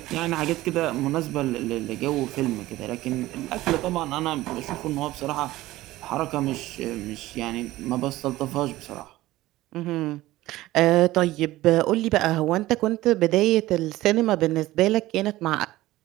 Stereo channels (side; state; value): left; quieter; 16.9 dB